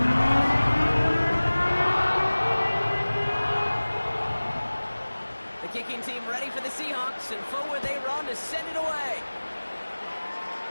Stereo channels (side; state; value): both; inverted; correlation -1.00